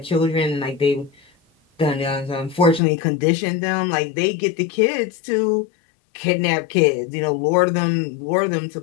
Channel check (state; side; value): drops out; right; at 2.8 s